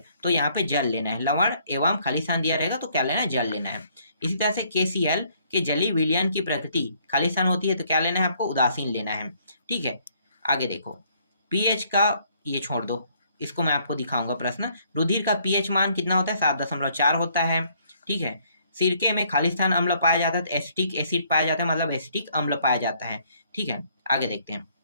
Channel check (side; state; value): both; inverted; correlation -0.65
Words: तो यहाँ पे जल लेना है, लवण एवं खाली स्थान दिया रहेगा तो क्या लेना है, जल लेना है। इसी तरह से KCl के जलीय विलयन की प्रकृति खाली स्थान होती है, तो क्या लेना है, आपको उदासीन लेना है। ठीक है, आगे देखो, pH का ये छोड़ दो, इसको मैं आपको दिखाऊंगा प्रश्न। रुधिर का pH मान कितना होता है, 7.4 होता है। ठीक है, सिरके में खाली स्थान अम्ल पाया जाता है, तो एसिटिक एसिड पाया जाता है, मतलब एसिटिक अम्ल पाया जाता है। ठीक है, आगे देखते हैं।